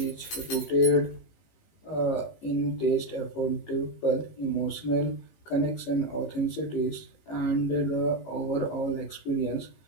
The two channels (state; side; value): late; right; 19 ms